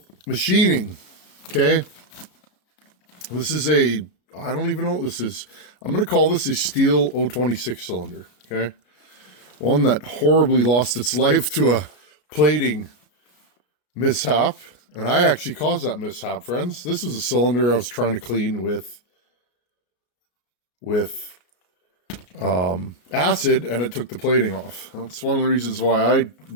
machining, okay? This is I don't even know what this is. I'm going to call this a steel 026 cylinder, okay? One that horribly lost its life to a plating mishap. And I actually caused that mishap, friends. This was a cylinder I was trying to clean with acid, and it took the plating off. That's one of the reasons why I've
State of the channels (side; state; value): right; late; 33 ms